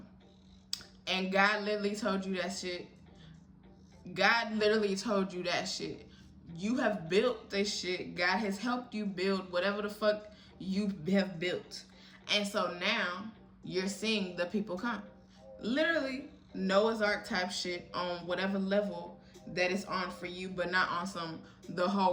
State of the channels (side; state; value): both; identical; correlation 1.00